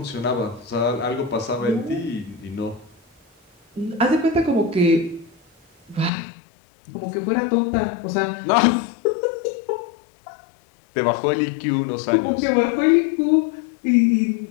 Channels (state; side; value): drops out; right; at 6.1 s